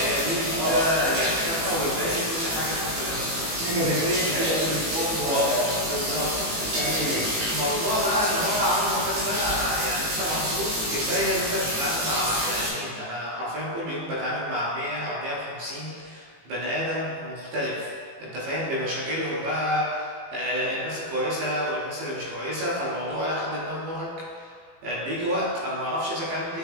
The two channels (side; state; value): left; late; 18 ms